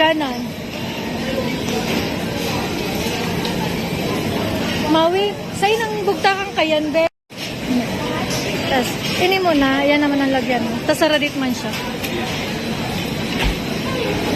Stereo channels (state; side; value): identical; both; correlation 1.00